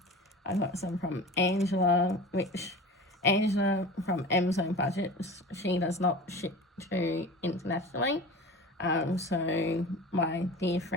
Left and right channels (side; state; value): both; normal; correlation 0.35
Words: I've got some from Angela, which Angela from Amazon Budgets, she does not ship to internationally. So my dear